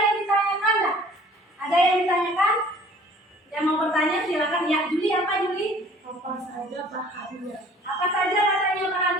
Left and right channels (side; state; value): both; normal; correlation 0.52